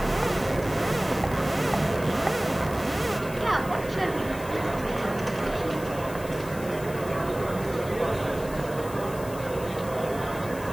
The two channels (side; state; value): left; noise; hiss, 16 dB below the sound